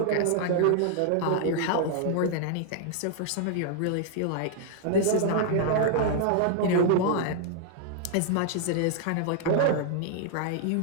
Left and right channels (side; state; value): both; different; correlation -0.01